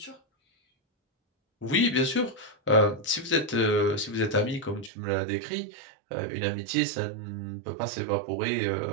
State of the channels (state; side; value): drops out; left; at 4.9 s